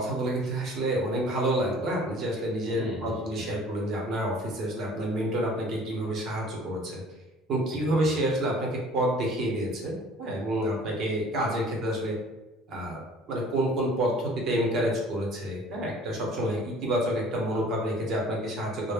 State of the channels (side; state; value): both; normal; correlation 0.51